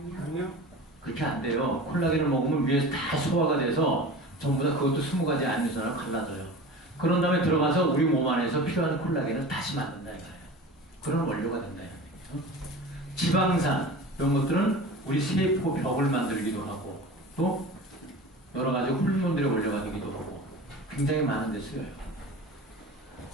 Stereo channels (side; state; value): both; normal; correlation 0.35